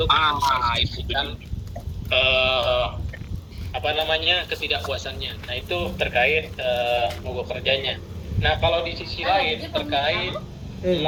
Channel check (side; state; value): both; identical; correlation 1.00